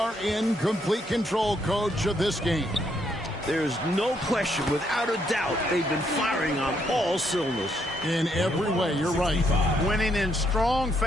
in complete control, coach, of this game. There's no question, without a doubt, they've been firing on all cylinders. In every way, you're right. Winning in strong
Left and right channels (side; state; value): both; normal; correlation 0.74